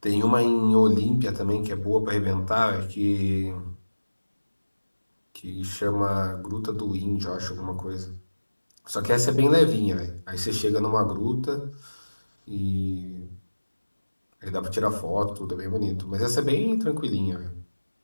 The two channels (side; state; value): both; inverted; correlation -1.00